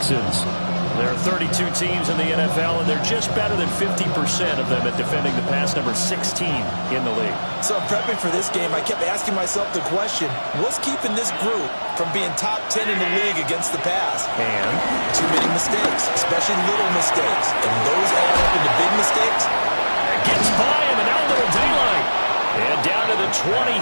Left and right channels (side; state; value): both; inverted; correlation -1.00